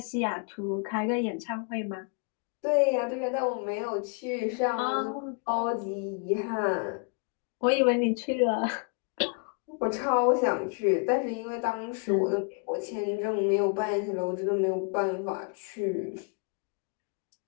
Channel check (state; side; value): quieter; right; 37.4 dB